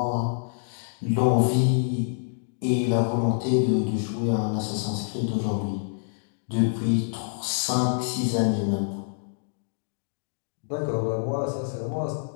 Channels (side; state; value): right; silent; digital silence